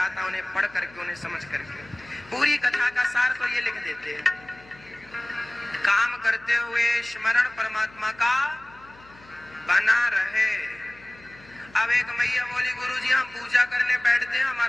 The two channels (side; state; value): left; noise; hum, 24 dB below the sound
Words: उन्हें पढ़ करके, उन्हें समझ करके। पूरी कथा का सार तो ये लिख देते हैं, काम करते हुए स्मरण परमात्मा का बना रहे। अब एक मैया बोली, गुरुजी हम पूजा करने बैठते हैं,